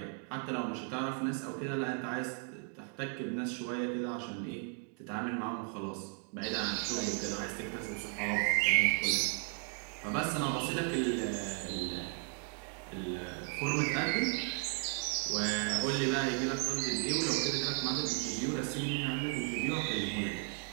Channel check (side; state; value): left; quieter; 38.6 dB